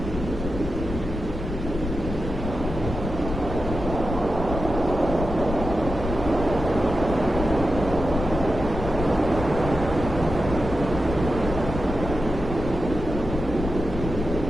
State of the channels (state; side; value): noise; left; rumble, 6 dB below the sound